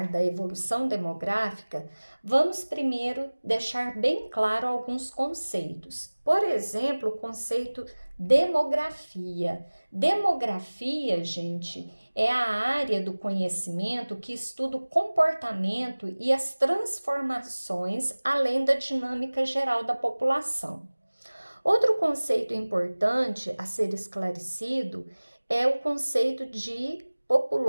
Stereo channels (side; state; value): both; inverted; correlation -1.00